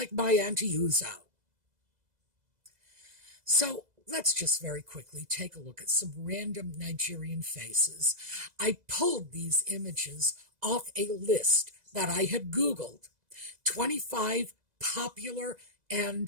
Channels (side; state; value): left; late; 2.0 ms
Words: my Auntie Uzo. So, let's just very quickly take a look at some random Nigerian faces. I pulled these images off a list that I had Googled. 25 popular